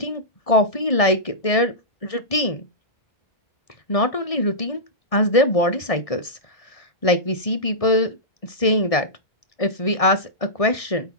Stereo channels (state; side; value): late; right; 1.6 ms